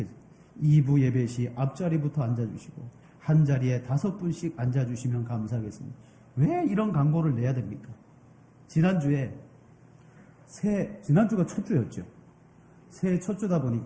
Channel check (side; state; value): both; identical; correlation 1.00